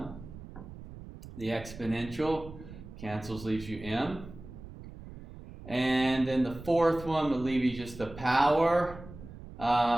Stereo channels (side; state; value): right; noise; rumble, 15 dB below the sound